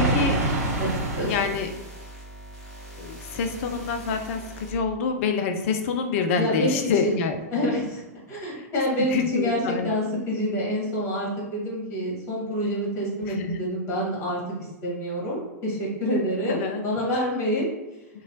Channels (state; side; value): normal; both; correlation -0.15